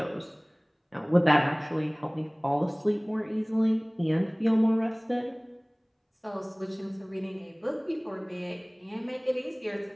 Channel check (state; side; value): identical; both; correlation 1.00